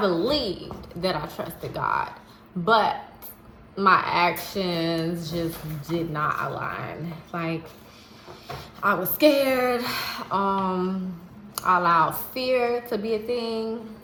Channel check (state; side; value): identical; both; correlation 1.00